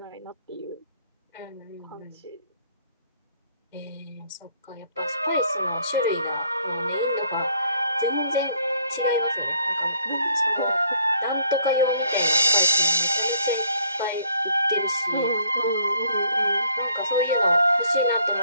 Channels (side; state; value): both; inverted; correlation -0.64